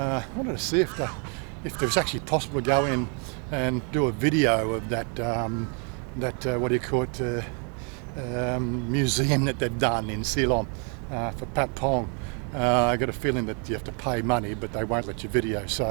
wanted to see if it was actually possible to go in and do a video of that what do you call it, museum that they've done in Ceylon for Pat Pong. I got a feeling that you have to pay money, but they won't let you video.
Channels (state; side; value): quieter; left; 38.3 dB